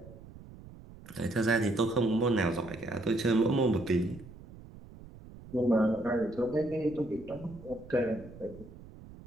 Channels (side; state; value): right; noise; rumble, 18 dB below the sound